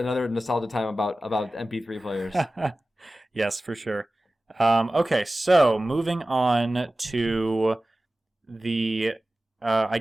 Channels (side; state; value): both; normal; correlation 0.96